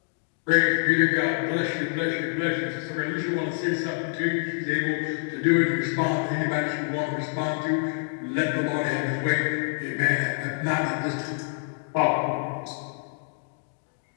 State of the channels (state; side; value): silent; right; 61 dB below the other